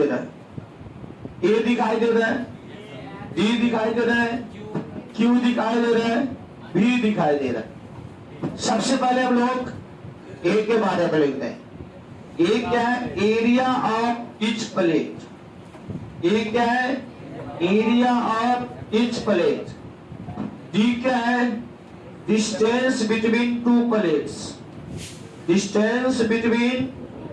रहा है? ए दिखाई दे रहा है, डी दिखाई दे रहा है, क्यू दिखाई दे रहा है, बी दिखाई दे रहा है। सबसे पहले हम लोग ए के बारे में लिखते हैं। ए क्या है? Area of each plate. A क्या है? Area of each plate. D क्या है? Distance between two plates, distance between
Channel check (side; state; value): both; identical; correlation 1.00